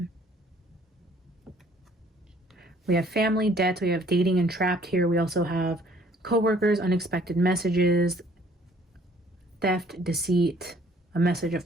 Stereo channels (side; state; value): both; normal; correlation 0.59